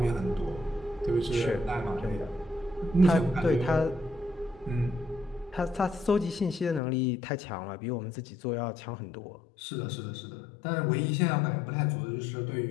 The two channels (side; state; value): right; drops out; at 6.8 s